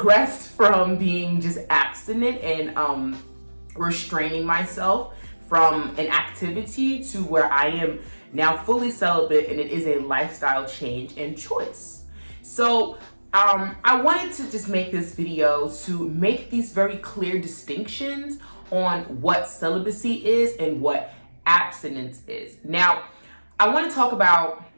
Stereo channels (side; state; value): both; inverted; correlation -1.00